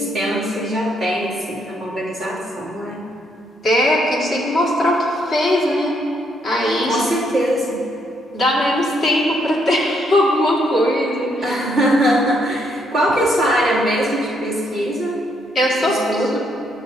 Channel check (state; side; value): normal; both; correlation 0.73